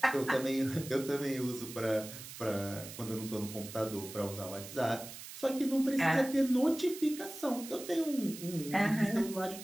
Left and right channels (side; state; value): right; noise; hiss, 12 dB below the sound